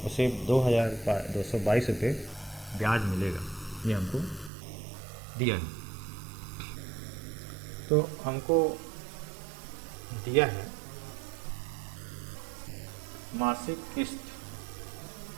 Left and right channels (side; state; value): left; drops out; at 4.5 s